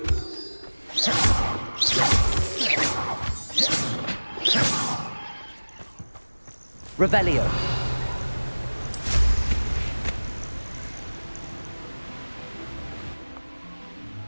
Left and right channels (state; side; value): inverted; both; correlation -1.00